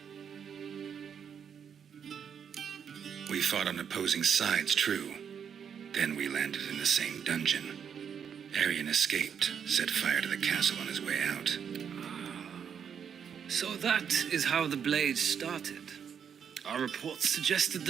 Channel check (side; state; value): left; quieter; 7.7 dB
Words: We fought on opposing sides, true. Then we landed in the same dungeon. Arian escaped, set fire to the castle on his way out. So that is how the blade started. Our reports suggested